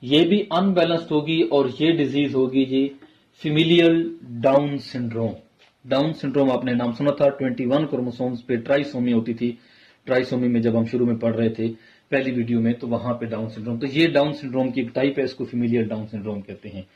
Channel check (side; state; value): both; identical; correlation 1.00